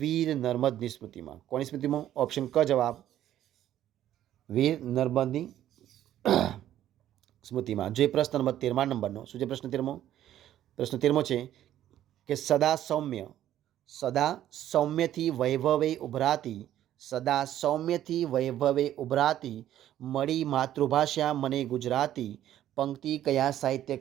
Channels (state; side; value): quieter; left; 12.1 dB